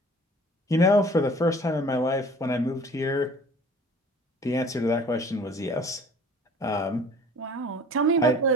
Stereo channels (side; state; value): both; normal; correlation 0.48